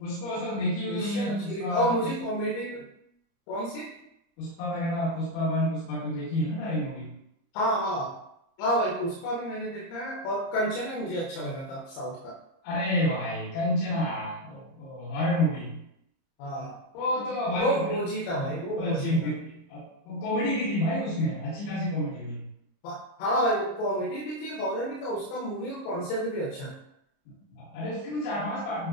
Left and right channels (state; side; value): late; right; 30 ms